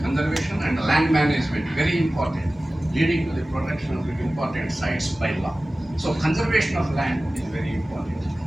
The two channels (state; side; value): normal; both; correlation 0.97